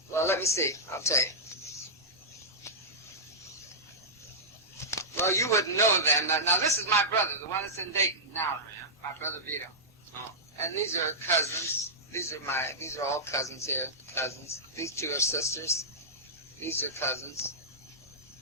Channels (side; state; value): both; normal; correlation -0.12